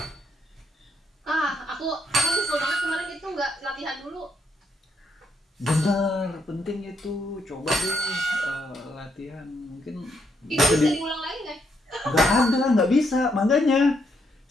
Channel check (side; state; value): both; normal; correlation 0.76